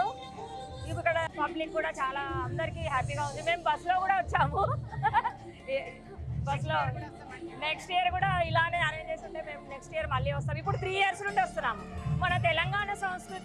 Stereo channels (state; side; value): identical; both; correlation 1.00